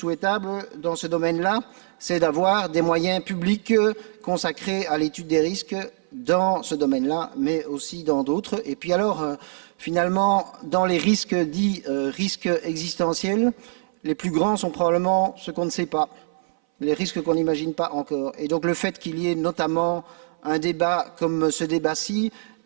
dans ce domaine-là, c'est d'avoir des moyens publics consacrés à l'étude des risques dans ce domaine-là, mais aussi dans d'autres. Et puis alors, finalement, dans les risques dits risques existentiels, les plus grands sont probablement ceux qu'on ne sait pas, les risques qu'on n'imagine pas encore. Et donc le fait qu'il y ait notamment un débat comme ce débat-ci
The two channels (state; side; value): silent; left; 59 dB below the other